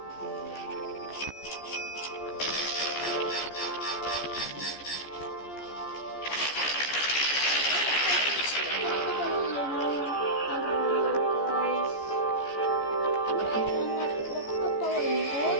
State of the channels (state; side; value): late; right; 14 ms